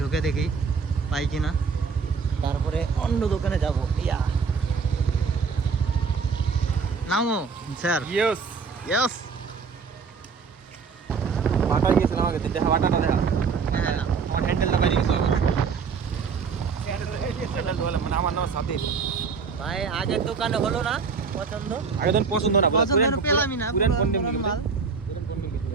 ঢুকে দেখি পাই কিনা, তারপরে অন্য দোকানে যাব। ইয়া নামো স্যার। Yes yes. বাটা গিয়েছিলাম আগে, দেখা বাটাটা দেখা। হ্যাঁ না, আমার হ্যান্ডেলটা বাইরে গেছিল। মানে আমার নাম সাথে। ভাই আগের দোকানে হলো না পছন্দ। আগে তো পছন্দ না, পছন্দ পেলামই না। পুরান পণ্য মাল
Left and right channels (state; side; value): quieter; left; 5.4 dB